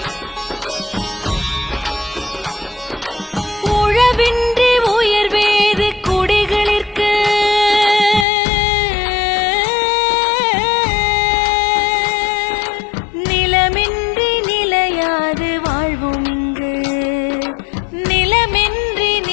உழவின்றி உயர்வேது குடிகளிற்கு நிலமின்றி நிலையாது வாழ்வும் இங்கு நிலமின்றி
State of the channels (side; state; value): right; drops out; at 8.2 s